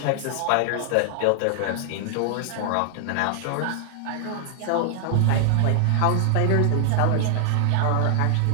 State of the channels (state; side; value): different; both; correlation 0.00